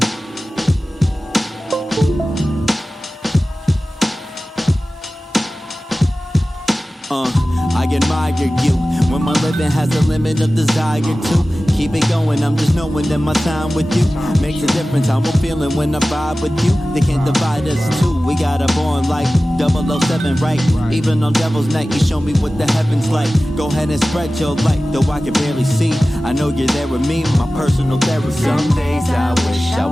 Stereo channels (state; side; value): normal; both; correlation 0.96